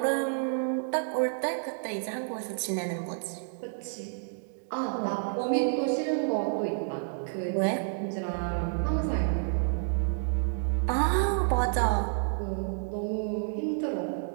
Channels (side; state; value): left; silent; digital silence